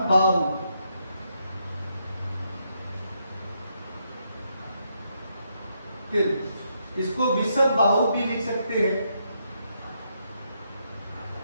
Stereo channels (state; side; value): inverted; both; correlation -0.78